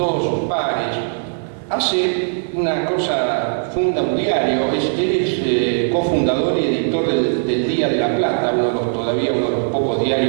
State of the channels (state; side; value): silent; left; 60 dB below the other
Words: sus pares. Hace una cosa, funda un diario, él es cofundador y editor del Día de la Plata, todavía uno de los pocos